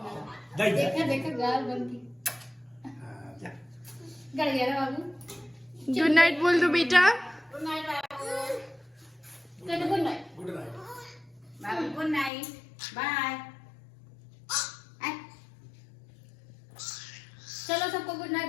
देखा देखा गाल बनती गड़ गया ना बाबू। गुड नाइट बोल दो बेटा। गुड नाइट बाबू। चलो गुड नाइट। बाबू गुड नाइट, बाय। चलो सबको गुड नाइट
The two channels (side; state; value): right; drops out; at 12.3 s